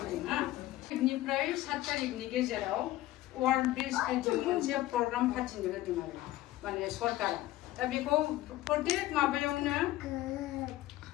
দিম নিफ्राय 7 तारिखनि गेजेराव वार्ल्ड ब्रिज बिल्डिं मोनसे प्रग्राम फाथिनो होदों आरो माने सरकारा दा बेखौ प्रत्येक माबायावनो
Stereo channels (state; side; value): quieter; right; 16.0 dB